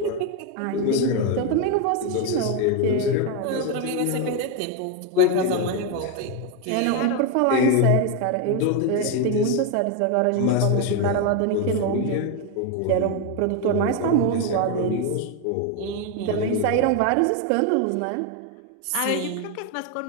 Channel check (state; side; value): different; both; correlation 0.02